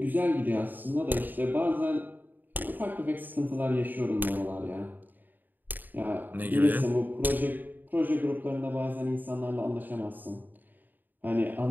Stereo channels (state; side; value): late; left; 0.089 ms